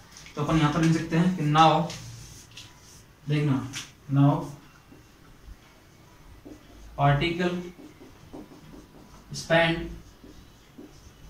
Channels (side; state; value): both; identical; correlation 1.00